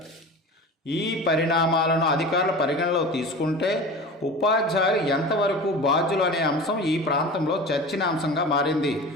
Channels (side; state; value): both; normal; correlation 0.34